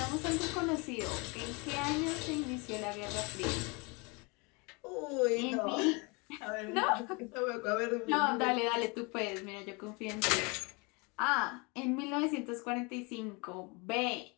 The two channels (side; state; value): right; quieter; 29.2 dB